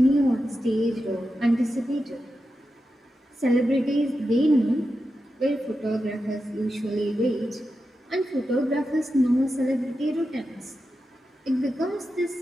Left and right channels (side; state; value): both; normal; correlation 0.90